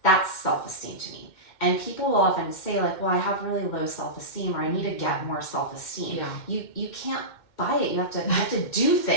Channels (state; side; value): late; right; 2.1 ms